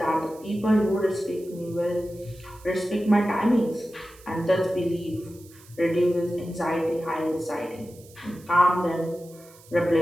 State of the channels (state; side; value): noise; right; hiss, 24 dB below the sound